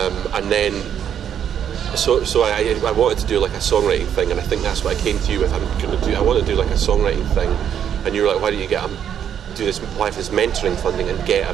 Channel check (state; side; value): quieter; left; 9.1 dB